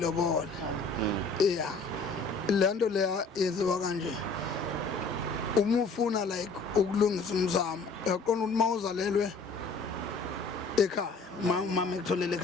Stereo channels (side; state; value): right; quieter; 3.9 dB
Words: lento leya yenziwa kanje uma ufuna like ukulungisa umzamo yaqona ukuthi mawuzalelwe ekhaya mama ekutholela